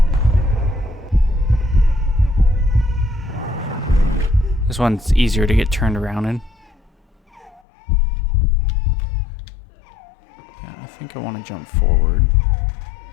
this one's easier to get turned around in. Yeah, I think I want to jump forward.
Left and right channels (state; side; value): drops out; right; at 7.6 s